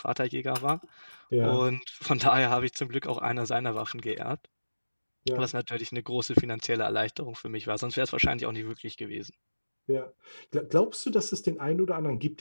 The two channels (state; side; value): inverted; both; correlation -1.00